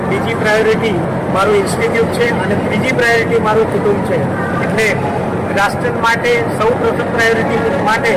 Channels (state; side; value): identical; both; correlation 1.00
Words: બીજી પ્રાયોરિટી મારું ઇન્સ્ટિટ્યૂટ છે અને ત્રીજી પ્રાયોરિટી મારું કુટુંબ છે. એટલે રાષ્ટ્ર માટે સૌ પ્રથમ પ્રાયોરિટી માટે